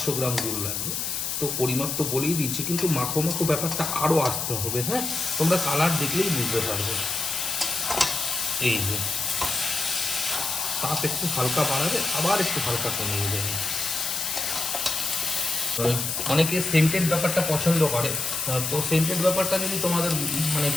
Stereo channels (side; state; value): left; noise; hiss, 2 dB below the sound